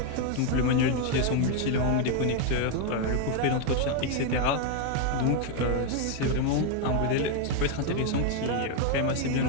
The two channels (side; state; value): both; different; correlation 0.01